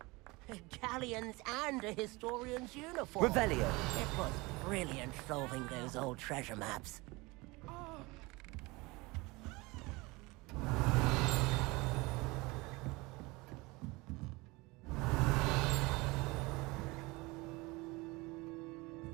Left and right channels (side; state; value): left; quieter; 23.8 dB